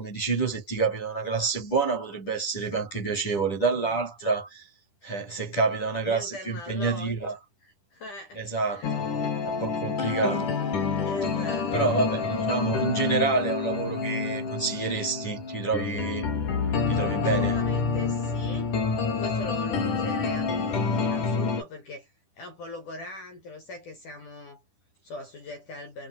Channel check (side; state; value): right; late; 10 ms